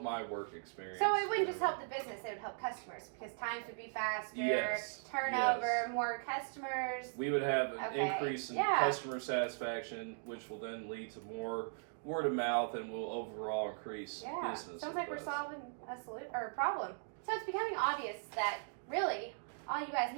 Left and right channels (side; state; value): left; silent; digital silence